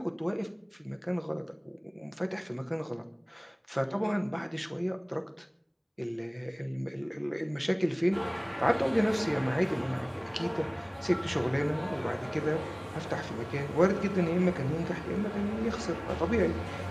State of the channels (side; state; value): both; identical; correlation 1.00